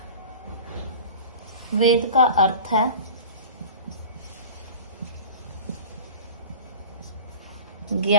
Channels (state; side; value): inverted; both; correlation -0.37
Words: वेद का अर्थ है